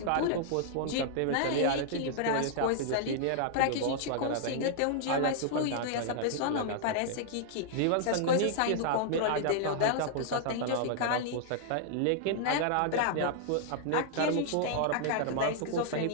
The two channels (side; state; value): both; different; correlation -0.01